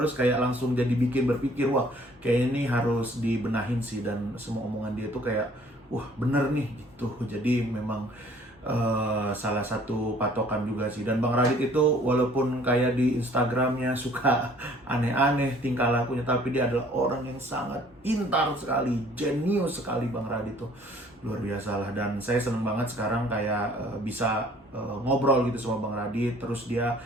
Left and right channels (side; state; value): both; normal; correlation 0.56